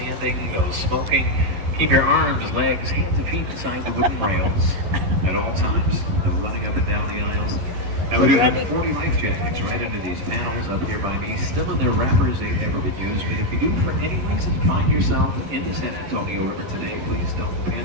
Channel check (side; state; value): left; late; 11 ms